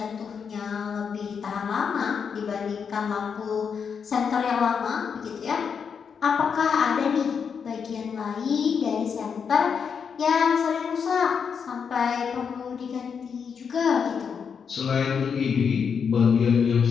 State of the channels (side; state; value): right; quieter; 6.5 dB